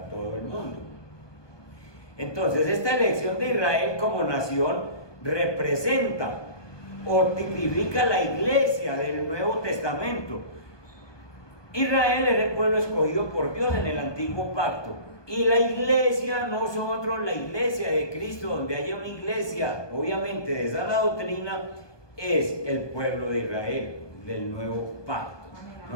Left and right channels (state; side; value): late; right; 1.2 ms